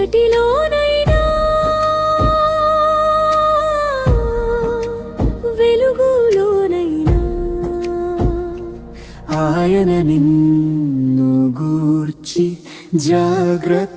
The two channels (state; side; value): identical; both; correlation 1.00